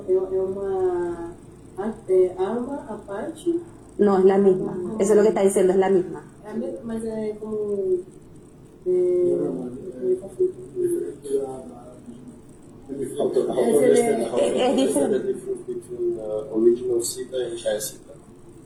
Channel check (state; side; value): identical; both; correlation 1.00